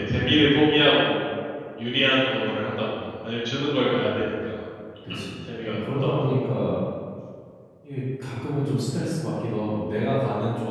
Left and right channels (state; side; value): identical; both; correlation 1.00